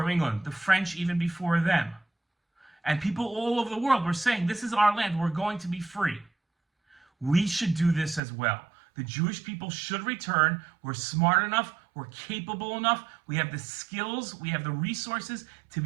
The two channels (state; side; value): drops out; left; at 8.2 s